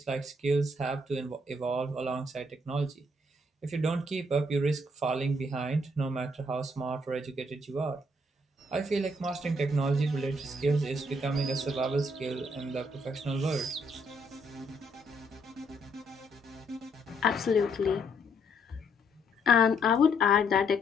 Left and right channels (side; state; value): both; normal; correlation 0.70